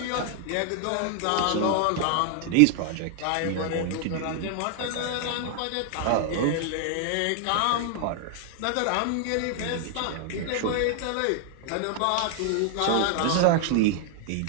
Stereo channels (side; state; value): both; different; correlation 0.00